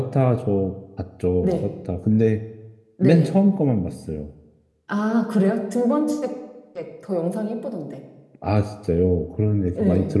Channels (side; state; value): both; identical; correlation 1.00